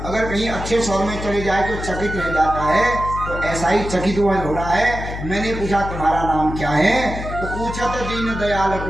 अगर कहीं अच्छे शहर में चले जाए तो चकित रह जाता है, तो ऐसा ही चकित हुआ हो रहा है। मैंने पूछा तुम्हारा नाम क्या है? तो पूछा तो दीन दयाल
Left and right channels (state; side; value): noise; left; hum, 7 dB below the sound